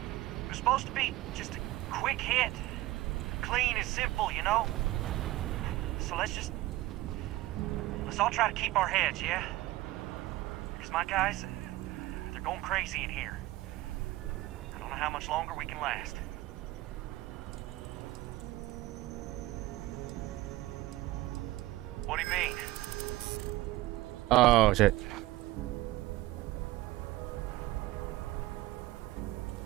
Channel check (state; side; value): quieter; left; 17.5 dB